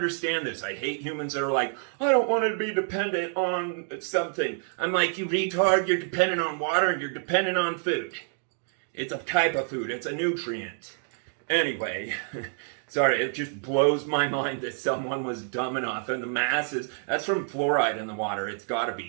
this. I hate humans that are like, I don't want to be dependent on something. I'm like, you retard, you're dependent on water and you're dependent on food. It's a type of food, it's a nutrient. Anyway, sorry, it just blows my mind that someone was dumb enough, and the masses, that's from fluoride in the water, it's gotta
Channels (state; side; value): silent; left; 59 dB below the other